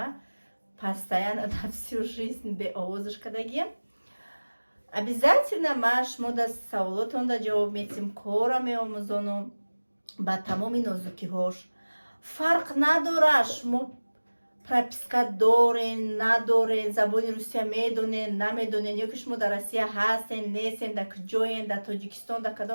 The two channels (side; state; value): both; inverted; correlation -1.00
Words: постоянно на всю жизнь беовозаш кардагиям. Обязательно ма шумо да саволотонда ҷавоб медиҳам, кора меомӯзонам ба тамоми нозукиҳош. фарқ надорад шумо прописка дорен, надорен, забони русия медонен, намедонен, ё ки шумо дар Россия ҳастен, нестен, да куҷоен, да Тоҷикистон, да